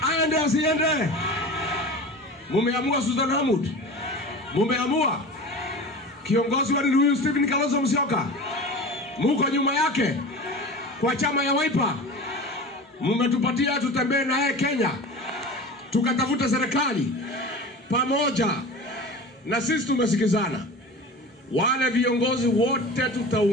Aende asiende. Mumeamua Susan Hamud. Mumeamua. Kiongozi wa huyu Stephen Kalonzo Musyoka. Muko nyuma yake. Kwa chama ya Wiper. Mumetupatia tutembee naye Kenya. Tukatafuta serikali pamoja. Na sisi tumesikizana. Wale viongozi wote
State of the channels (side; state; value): both; normal; correlation 0.34